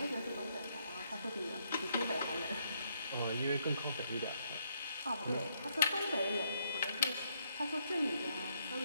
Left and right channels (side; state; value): both; inverted; correlation -0.74